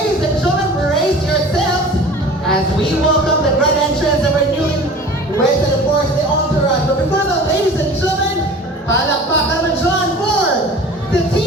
and gentlemen, brace yourselves as we welcome the grand entrance of our newlyweds and of course the entourage. But before that, ladies and gentlemen, palakpakan naman dyan for the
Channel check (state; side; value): normal; both; correlation 0.41